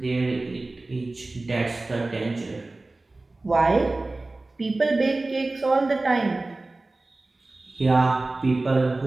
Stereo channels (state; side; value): quieter; left; 3.1 dB